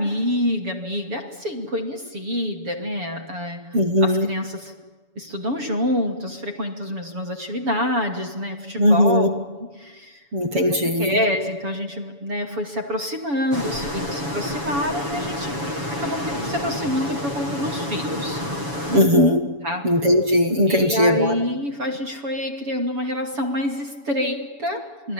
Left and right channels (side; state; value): left; late; 7.1 ms